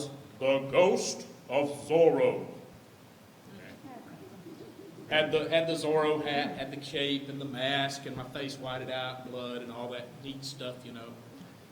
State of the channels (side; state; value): both; identical; correlation 1.00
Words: the ghost of Zorro. Had the Zorro hat, had the cape and the mask, and my face whited out, blood, and all that neat stuff,